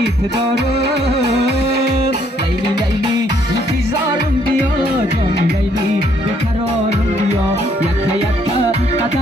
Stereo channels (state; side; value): normal; both; correlation 0.68